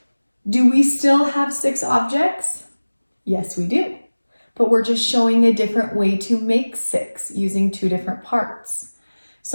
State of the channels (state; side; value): inverted; both; correlation -1.00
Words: Do we still have 6 objects? Yes, we do. But we're just showing a different way to make 6 using 2 different parts.